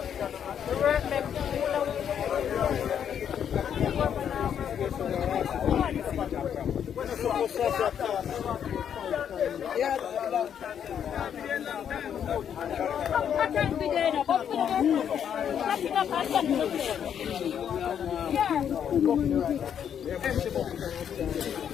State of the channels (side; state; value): right; quieter; 8.7 dB